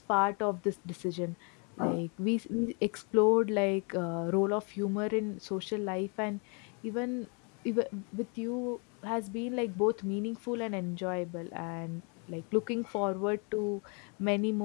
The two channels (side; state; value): right; quieter; 35.5 dB